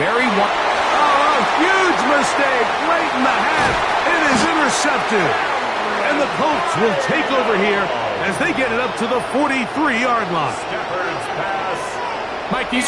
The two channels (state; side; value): identical; both; correlation 1.00